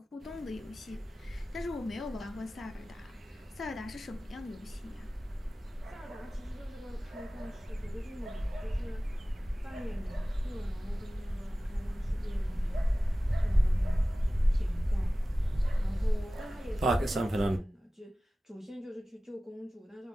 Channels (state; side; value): normal; both; correlation 0.97